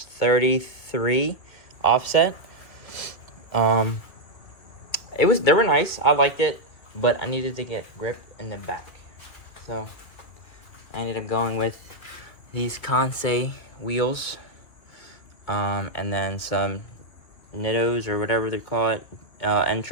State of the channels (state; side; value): late; right; 2.4 ms